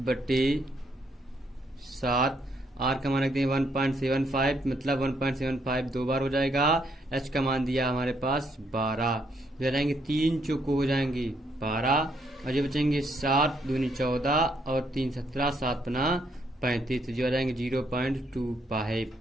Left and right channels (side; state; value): both; normal; correlation 0.73